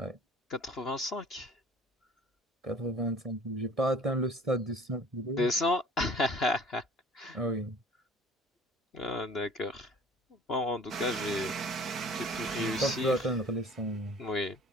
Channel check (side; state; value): both; normal; correlation 0.48